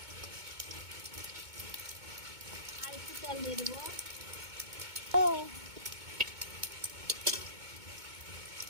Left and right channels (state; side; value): late; left; 2.2 ms